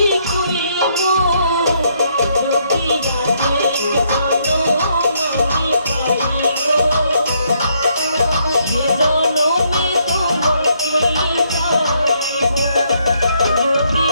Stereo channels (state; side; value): inverted; both; correlation -0.72